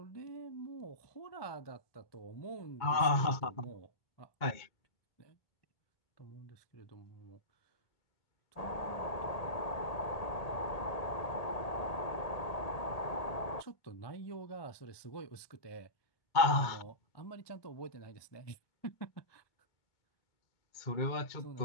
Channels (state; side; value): late; right; 2.2 ms